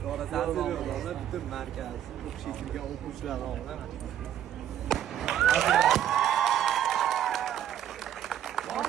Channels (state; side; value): quieter; left; 10.7 dB